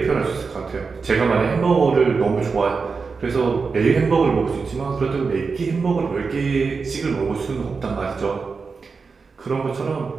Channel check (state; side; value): quieter; left; 4.8 dB